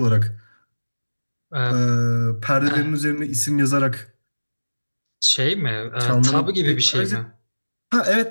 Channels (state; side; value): inverted; both; correlation -1.00